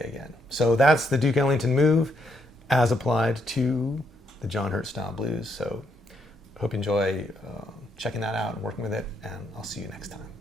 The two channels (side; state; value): both; normal; correlation 0.75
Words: again. So that's the Duke Ellington move as applied to the John Hurt style blues. So hope you enjoy checking that out and working with it, and I'll see you next time.